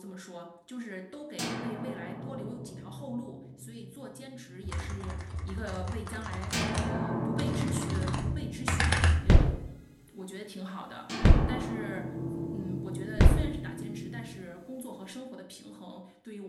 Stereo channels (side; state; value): both; identical; correlation 1.00